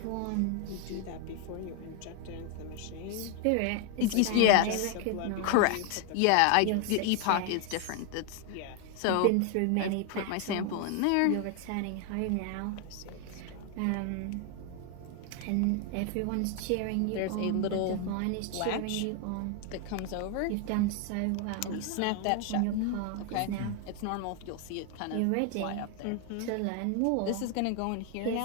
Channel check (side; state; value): both; different; correlation 0.00